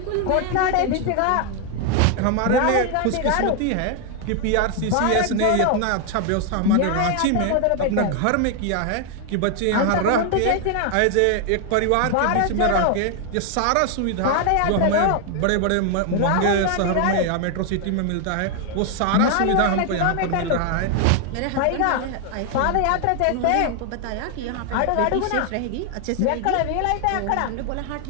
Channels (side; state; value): both; different; correlation 0.00